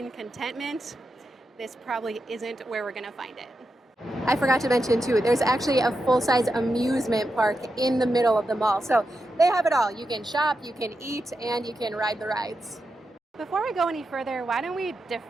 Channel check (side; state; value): both; normal; correlation 0.88